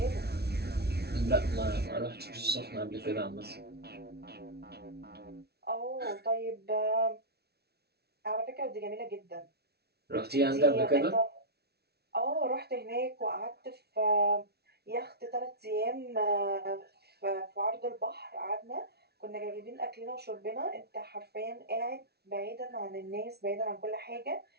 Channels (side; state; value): left; late; 0.47 ms